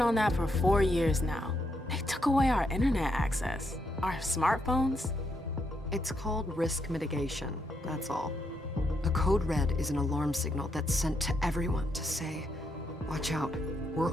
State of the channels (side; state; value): both; normal; correlation 0.79